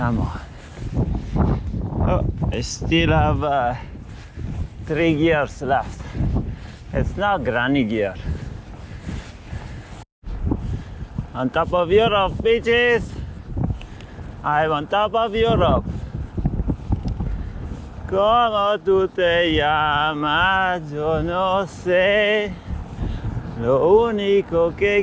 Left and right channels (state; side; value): identical; both; correlation 1.00